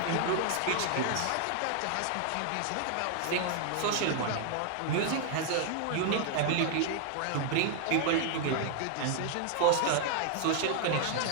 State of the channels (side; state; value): both; different; correlation 0.00